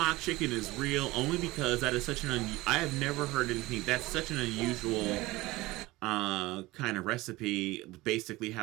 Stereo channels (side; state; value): left; quieter; 19.9 dB